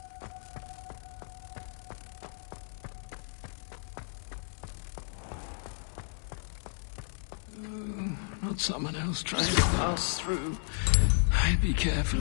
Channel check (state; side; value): silent; right; digital silence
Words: Oh, not someone else trying to pass through. I'd be careful.